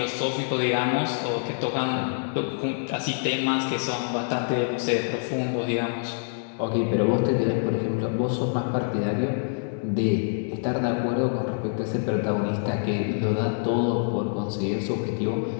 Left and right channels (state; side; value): silent; right; 61 dB below the other